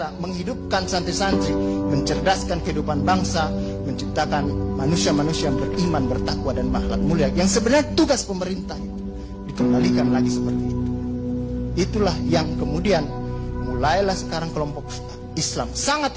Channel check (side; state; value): both; identical; correlation 1.00